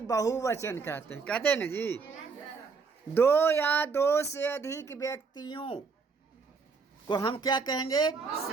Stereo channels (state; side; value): quieter; left; 4.9 dB